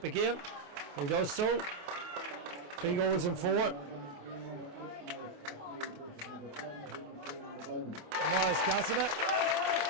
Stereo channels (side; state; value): left; late; 28 ms